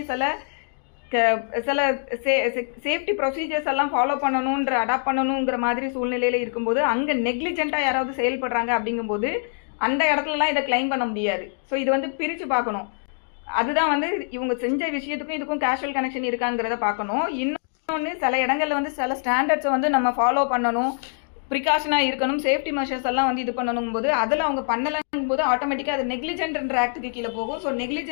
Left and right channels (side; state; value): right; silent; digital silence